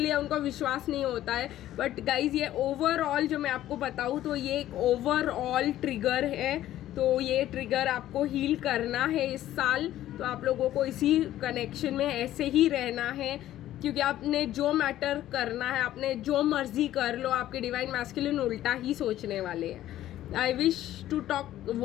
उनको विश्वास नहीं होता है। बट गाइज, ये ओवरऑल जो मैं आपको बताऊँ तो ये एक ओवरऑल ट्रिगर है। तो ये ट्रिगर आपको हील करना है इस साल। तो आप लोगों को इसी कनेक्शन में ऐसे ही रहना है, क्योंकि आपने जो मैटर करना है, आपने जो मर्जी कर लो, आपके डिवाइन मैस्कुलिन उल्टा ही सोचने वाले हैं। I wish to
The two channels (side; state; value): right; quieter; 13.4 dB